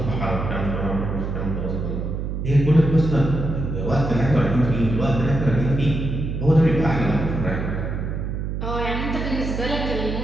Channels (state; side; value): noise; right; hum, 3 dB below the sound